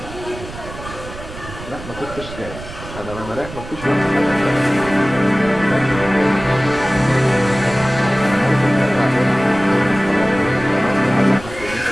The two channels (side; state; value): right; noise; rumble, 13 dB below the sound